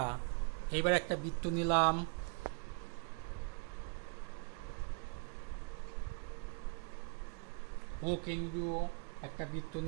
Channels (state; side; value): quieter; left; 33.9 dB